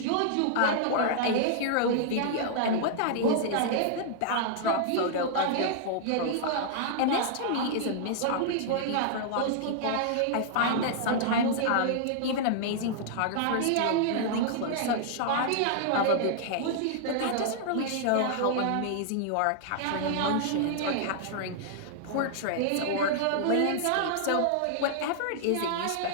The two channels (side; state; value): both; different; correlation -0.01